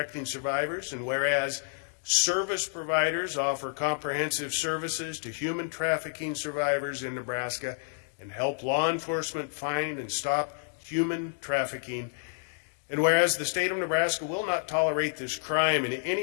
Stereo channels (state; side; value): silent; right; digital silence